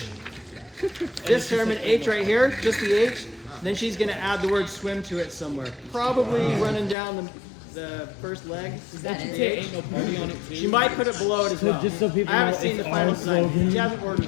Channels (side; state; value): right; drops out; at 7.0 s